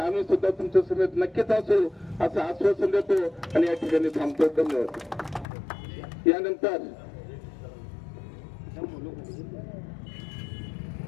सुद्धा तुमच्या समेत नक्कीच असू असं आश्वासन देतो आणि या ठिकाणी थांबतो. धन्यवाद.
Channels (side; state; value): right; drops out; at 5.5 s